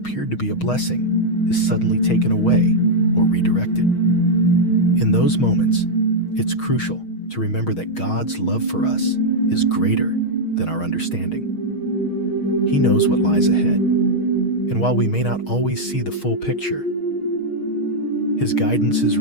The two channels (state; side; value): late; right; 6.4 ms